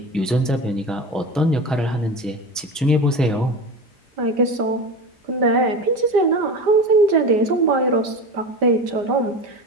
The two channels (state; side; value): normal; both; correlation 0.27